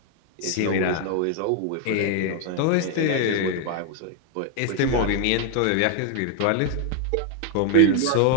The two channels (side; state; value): both; different; correlation 0.00